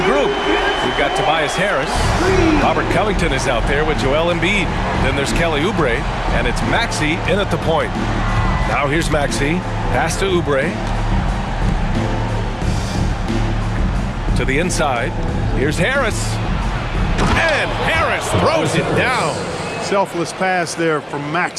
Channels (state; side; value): identical; both; correlation 1.00